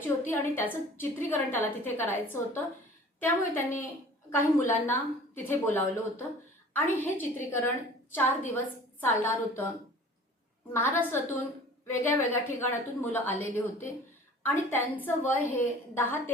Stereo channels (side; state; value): both; normal; correlation 0.45